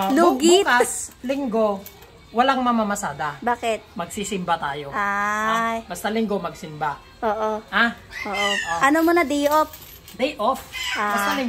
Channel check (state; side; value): identical; both; correlation 1.00